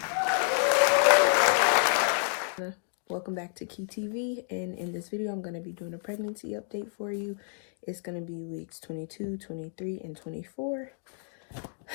Welcome back to Key TV, and in this video I'm going to be doing a pregnancy update for you. It's going to be weeks 22, 23, and 24.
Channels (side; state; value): right; silent; digital silence